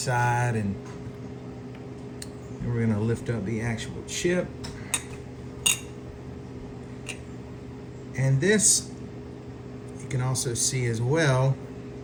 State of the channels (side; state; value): both; identical; correlation 1.00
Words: and we're gonna lift up the actual chip. And this, you can also see as well